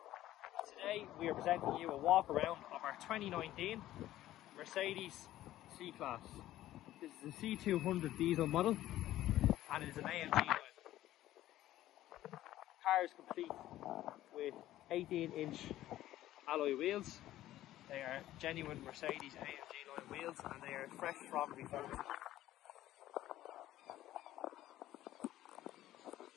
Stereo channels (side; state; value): right; quieter; 14.1 dB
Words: And today we are presenting you a walk around of our 2019 Mercedes C-Class. This is a C200 diesel model and it is an AMG line. The car is complete with 18-inch alloy wheels. They are genuine Mercedes AMG line wheels and they are fresh from refurbishment.